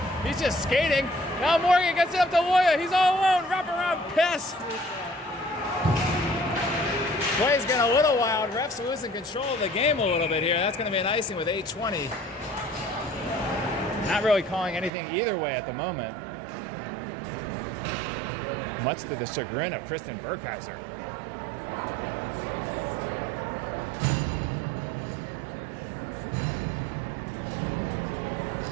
just skating. Now Morgan gets it up to Loya. He's all alone. Wraparound pass. Play's getting a little wild. Refs losing control of the game a little bit here. That's going to be an icing with 8:20. Not really calling anything either way at the moment. Much to the chagrin of Kristen Burkheiser.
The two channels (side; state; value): left; drops out; at 14.9 s